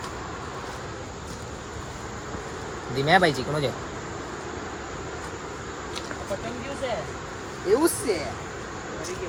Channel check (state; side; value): identical; both; correlation 1.00